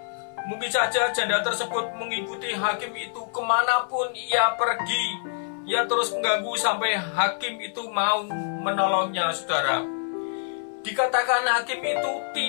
Mungkin saja janda tersebut mengikuti hakim itu kemanapun ia pergi. Ia terus mengganggu sampai hakim itu mau menolongnya, saudara. Dikatakan hakim itu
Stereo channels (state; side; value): silent; right; 58 dB below the other